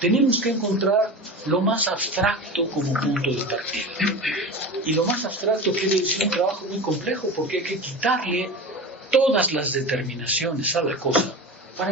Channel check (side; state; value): both; normal; correlation 0.29